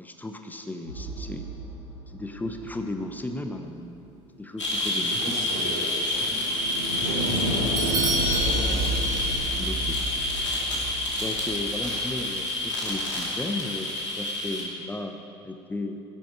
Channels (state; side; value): normal; both; correlation 0.18